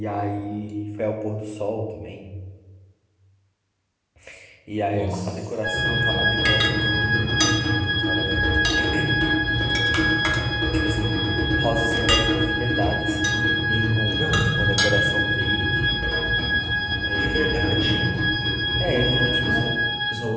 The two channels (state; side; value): identical; both; correlation 1.00